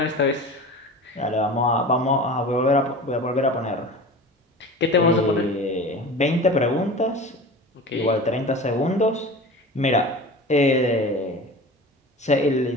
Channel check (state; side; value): normal; both; correlation 0.35